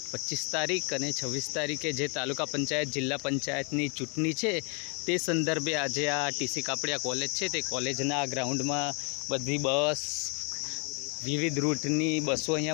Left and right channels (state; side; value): quieter; right; 35.0 dB